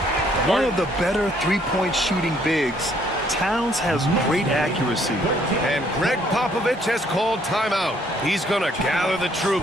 One of the better three-point shooting bigs. Towns has great accuracy. And Greg Popovich has called timeout. He's going to gather the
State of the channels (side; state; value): both; normal; correlation 0.65